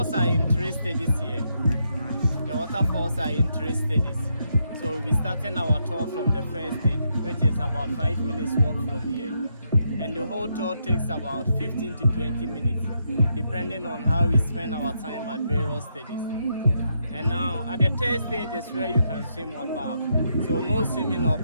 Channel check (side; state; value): both; inverted; correlation -0.79